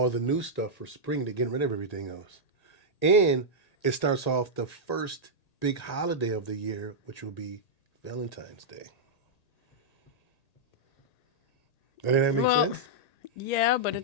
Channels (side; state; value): right; late; 1.8 ms